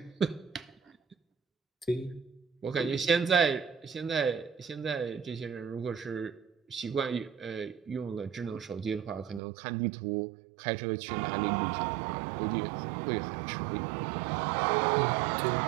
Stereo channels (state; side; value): drops out; left; at 9.4 s